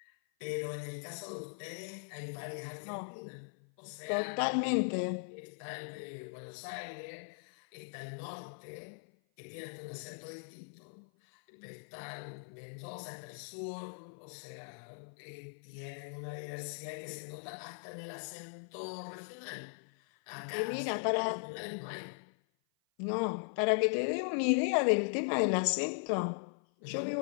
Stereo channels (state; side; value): silent; right; 52 dB below the other